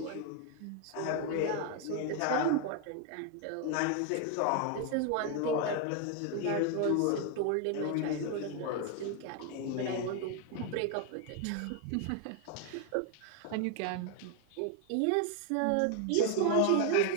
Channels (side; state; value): both; different; correlation 0.01